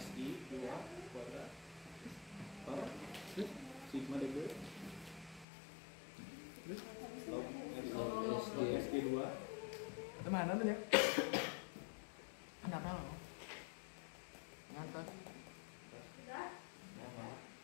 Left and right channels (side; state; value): right; drops out; at 5.5 s